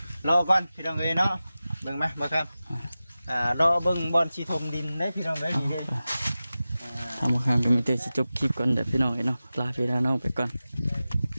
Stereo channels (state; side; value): inverted; both; correlation -0.95